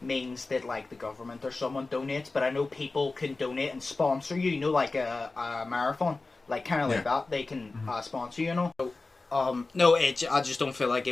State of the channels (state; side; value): quieter; right; 3.5 dB